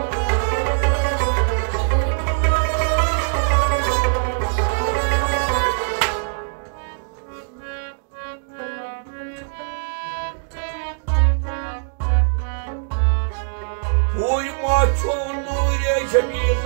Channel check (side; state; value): left; silent; digital silence